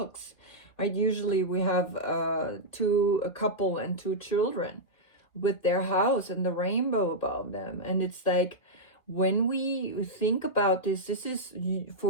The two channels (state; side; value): late; right; 1.7 ms